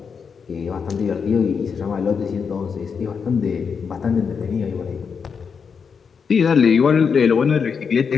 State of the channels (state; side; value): quieter; right; 6.1 dB